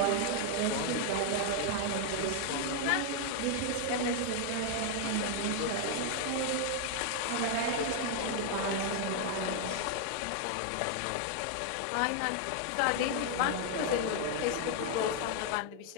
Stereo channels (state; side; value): different; both; correlation 0.00